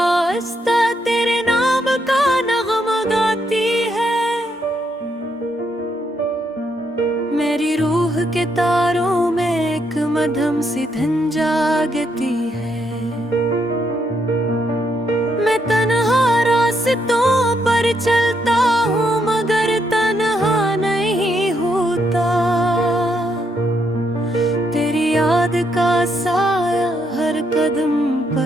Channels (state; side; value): normal; both; correlation 0.76